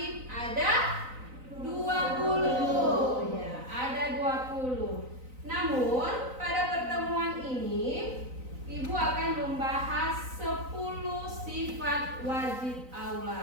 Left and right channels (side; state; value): left; late; 3.9 ms